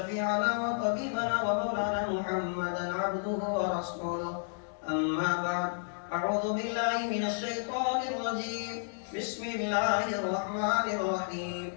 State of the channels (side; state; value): right; silent; digital silence